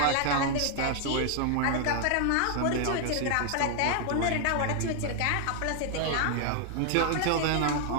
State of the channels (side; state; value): both; different; correlation 0.00